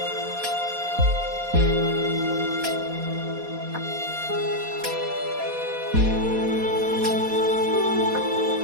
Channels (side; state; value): left; late; 4.2 ms